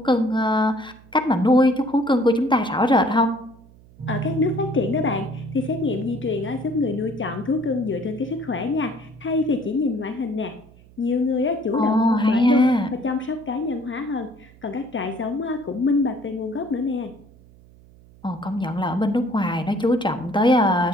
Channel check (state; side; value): noise; right; hum, 25 dB below the sound